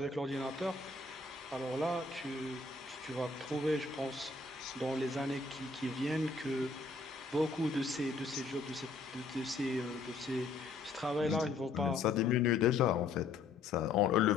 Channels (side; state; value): right; quieter; 4.0 dB